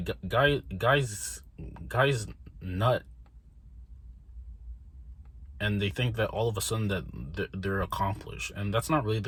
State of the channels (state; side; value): identical; both; correlation 1.00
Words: guys nut, and they think that all of a sudden that they're accomplished, and that's not really